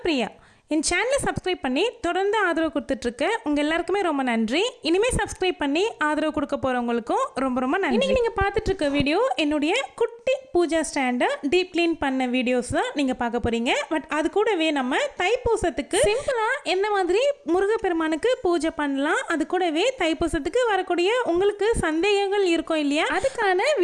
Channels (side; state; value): both; identical; correlation 1.00